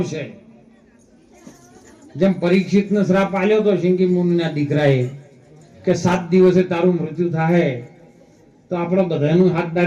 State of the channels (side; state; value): both; identical; correlation 1.00